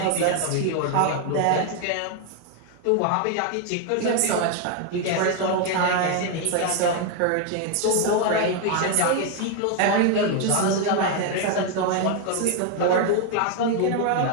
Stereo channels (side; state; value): both; different; correlation 0.01